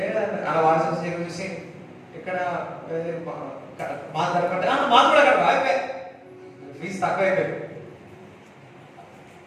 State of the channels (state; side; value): identical; both; correlation 1.00